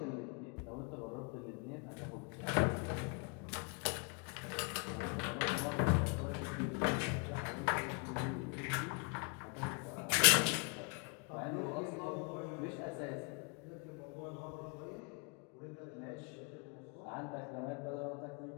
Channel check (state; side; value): quieter; right; 36.3 dB